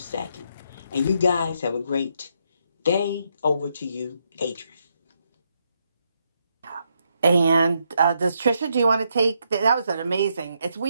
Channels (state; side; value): inverted; both; correlation -0.78